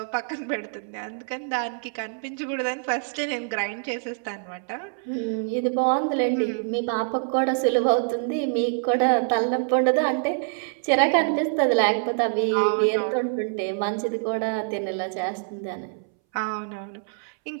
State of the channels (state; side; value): silent; left; 61 dB below the other